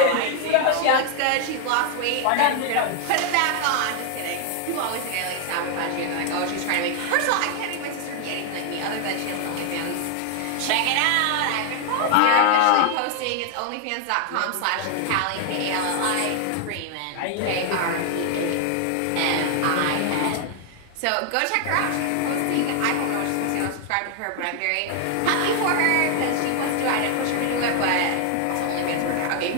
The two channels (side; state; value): both; different; correlation 0.00